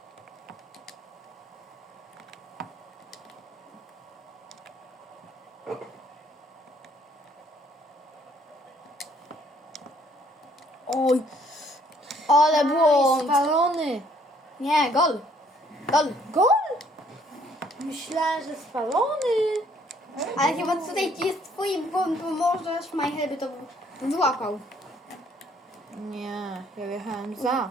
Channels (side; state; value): both; normal; correlation 0.64